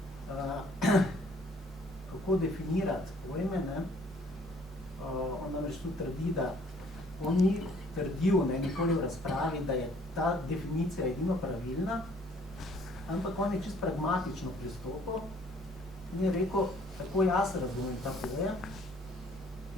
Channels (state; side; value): normal; both; correlation 0.59